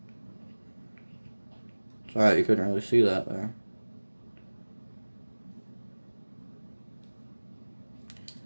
It's alright, you couldn't really see that there.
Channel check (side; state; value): both; inverted; correlation -1.00